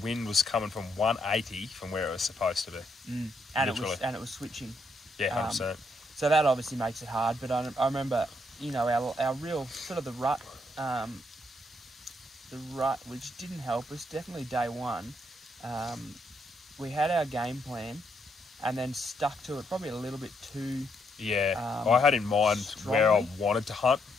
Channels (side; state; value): both; normal; correlation 0.76